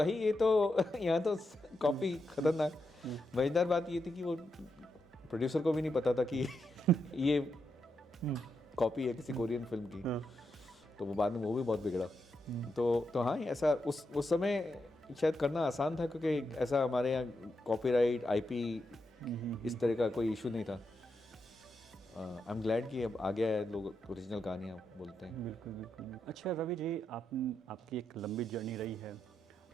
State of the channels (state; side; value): normal; both; correlation 0.84